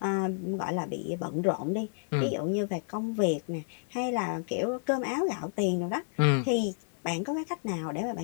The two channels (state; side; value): silent; right; 57 dB below the other